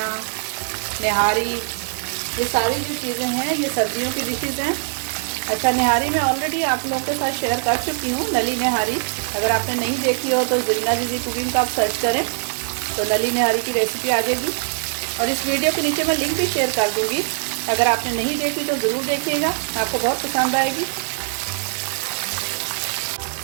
निहारी, ये सारी जो चीज़ें हैं ये सर्दियों की डिशेज़ हैं। अच्छा, निहारी मैं ऑलरेडी आप लोगों के साथ शेयर कर चुकी हूँ, नली निहारी। अगर आपने नहीं देखी हो तो ज़रीना दीदी कुकिंग का आप सर्च करें तो नली निहारी की रेसिपी आ जाएगी, और इस वीडियो के नीचे मैं लिंक भी शेयर कर दूँगी। अगर आपने नहीं देखी तो ज़रूर देखिएगा, आपको बहुत पसंद आएगी।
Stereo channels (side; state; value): left; silent; digital silence